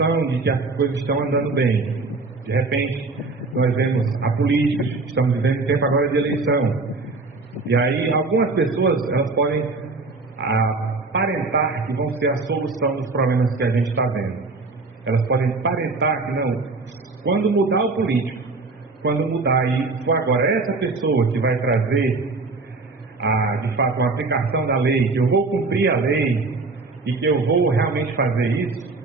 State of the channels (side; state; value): left; quieter; 3.7 dB